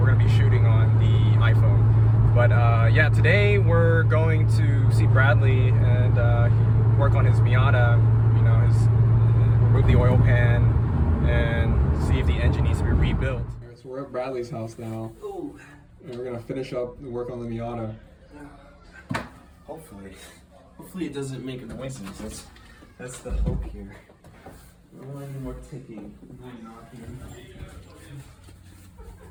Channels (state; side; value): identical; both; correlation 1.00